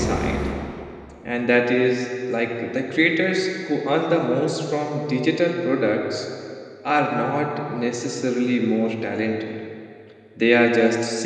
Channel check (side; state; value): both; identical; correlation 1.00